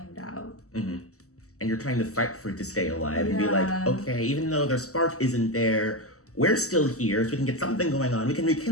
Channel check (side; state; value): right; late; 0.65 ms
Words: out. And you're trying to fight for it to stay alive and be like, okay, even though their spark isn't there, we're still here, so we can get something going on. We can